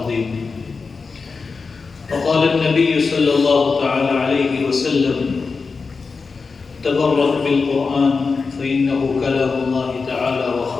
وقال النبي صلى الله تعالى عليه وسلم تبرك بالقرآن فإنه كلام الله تعالى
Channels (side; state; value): right; quieter; 4.6 dB